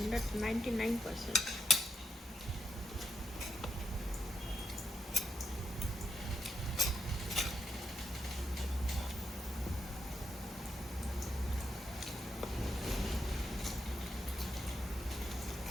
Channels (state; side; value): normal; both; correlation 0.82